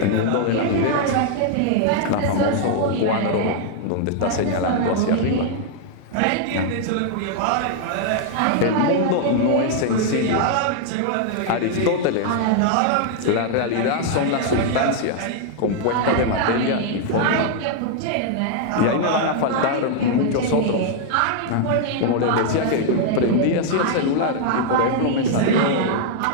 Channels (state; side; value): different; both; correlation 0.00